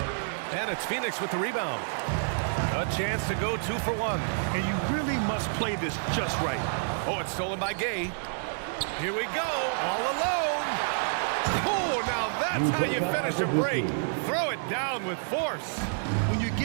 And it's Phoenix with the rebound. A chance to go 2 for 1. And you really must play this just right. Oh, it's stolen by Gay. Here we go, all alone. Oh, now that's how you finish a break. Throw it down with force. When you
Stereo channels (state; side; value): silent; left; digital silence